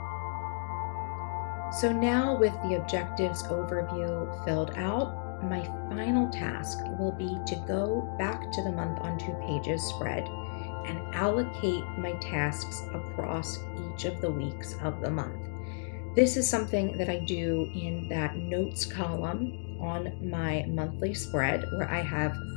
So now with the objectives overview filled out, my final task will be to go back to the month on 2 pages spread and allocate my tasks across each of the weeks of the month. This is something that I do in that notes column on my monthly spread where I have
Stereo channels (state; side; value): silent; right; digital silence